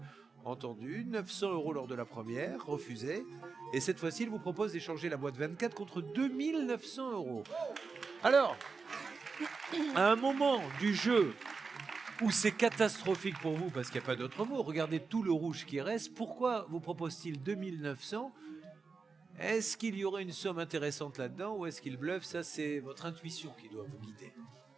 entendue. 900 € lors de la première, refusée. Et cette fois-ci, il vous propose d'échanger la boîte 24 contre 2900 €. Alors, à un moment du jeu où c'est catastrophique pour vous, parce qu'il n'y a pas d'autre mot, regardez tout le rouge qui reste, pourquoi vous propose-t-il 2900 €? Est-ce qu'il y aurait une somme intéressante là-dedans ou est-ce qu'il bluffe? Ça, c'est votre intuition qui doit vous guider.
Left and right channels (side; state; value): left; quieter; 4.7 dB